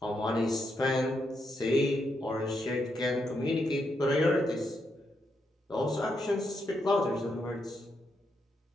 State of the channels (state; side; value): normal; both; correlation 0.81